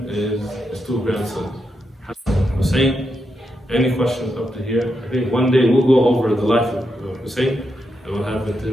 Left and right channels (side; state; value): both; normal; correlation 0.84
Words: is his two grandsons, Hassan and Hussein. Any questions up to here? I think one day we'll go over the life of Hussein and what happened to